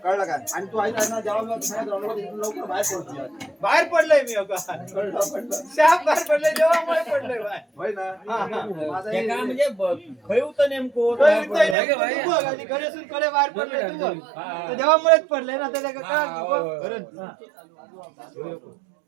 कळलं काय आणि तू ऐका ना जेव्हा लवकर बाहेर पडतो बाहेर पडलोय मी अगं शाप बाहेर पडलोय देवामुळे पडलोय बाहेर होय ना माझा ते काय म्हणजे खय होतं नेमकं तू बघ आणि घरेसून कडे बाहेर पडले तू बघ तर देवामुळेच पडले ना त्याला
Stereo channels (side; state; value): left; drops out; at 11.8 s